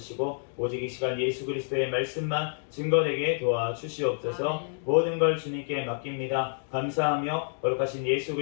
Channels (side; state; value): right; silent; 59 dB below the other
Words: 오직 이 시간 예수 그리스도의 말씀만 증거되게 도와주시옵소서. 모든 걸 주님께 맡깁니다. 감사하며 거룩하신 예수